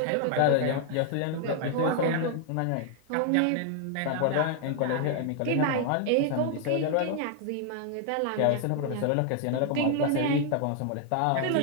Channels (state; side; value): different; both; correlation 0.00